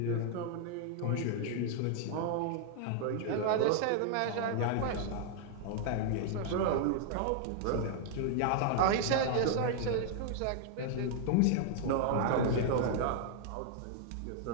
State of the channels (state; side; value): different; both; correlation 0.00